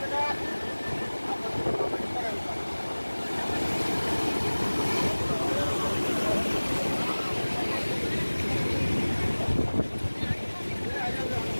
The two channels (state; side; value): inverted; both; correlation -1.00